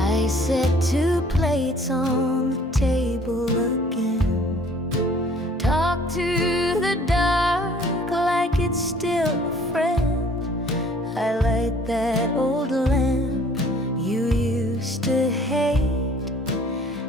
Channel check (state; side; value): normal; both; correlation 0.55